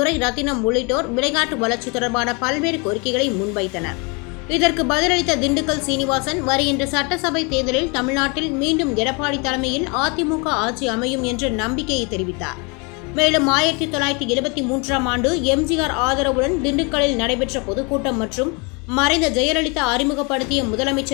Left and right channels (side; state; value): right; quieter; 31.3 dB